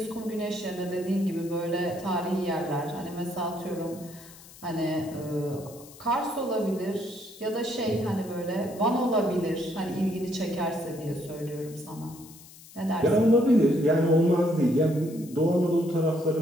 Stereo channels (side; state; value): left; noise; hiss, 20 dB below the sound